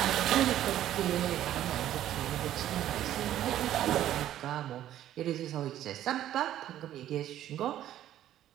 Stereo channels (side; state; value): left; quieter; 12.2 dB